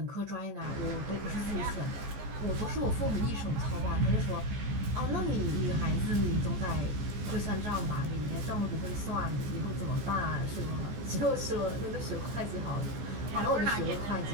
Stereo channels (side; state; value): left; late; 14 ms